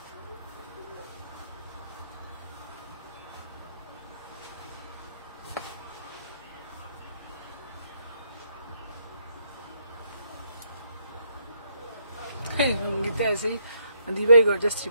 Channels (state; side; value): inverted; both; correlation -0.74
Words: Sangeeta ऐसे ही दीवाई gorgeous